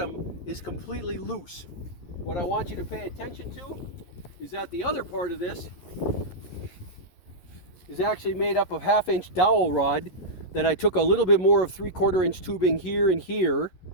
is completely loose. What I want you to pay attention to is that the other part of this is actually made up of 1/2 inch dowel rod that I took a little bit more of 3/4 inch tubing here and here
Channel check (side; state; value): right; late; 11 ms